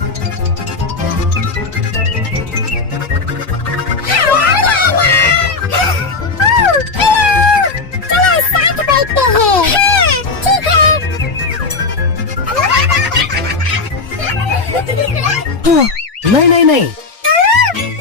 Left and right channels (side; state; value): right; quieter; 4.1 dB